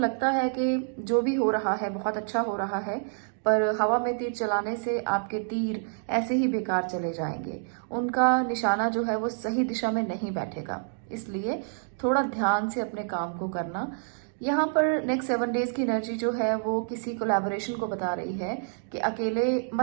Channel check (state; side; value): silent; left; digital silence